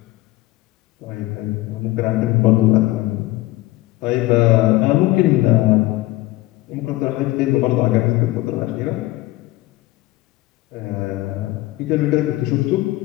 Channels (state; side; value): quieter; right; 18.5 dB